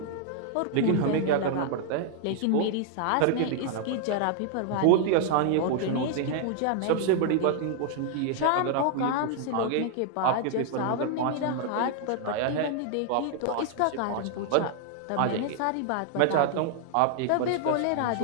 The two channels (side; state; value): both; different; correlation 0.00